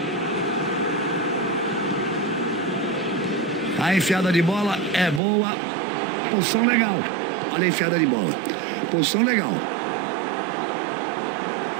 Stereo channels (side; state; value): left; drops out; at 5.2 s